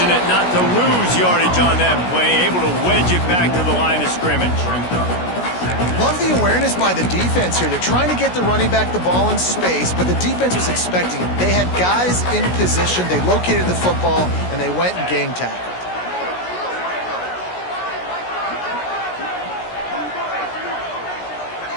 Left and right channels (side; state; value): right; late; 16 ms